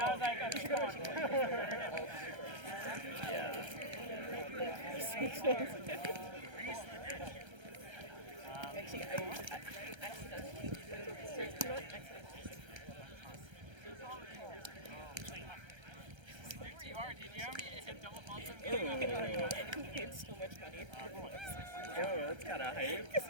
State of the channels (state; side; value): late; left; 1.3 ms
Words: I was like, You should go to Walmart. Yeah. Actually, I accidentally, not accidentally. Where you are, did you have me hit double faults on me? I paid so much money for books. Yo, that's kind of hype.